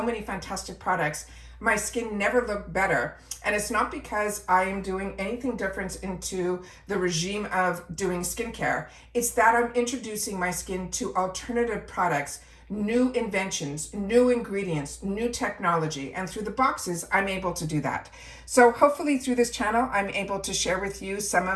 fantastic products. My skin never looked better. And it's not because I am doing anything different into the regime of doing skincare. It's that I'm introducing my skin to alternative products, new inventions, new ingredients, new technology. And through the boxes, I'm able to do that. So hopefully through this channel, I'm able to share with you some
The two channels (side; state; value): both; identical; correlation 1.00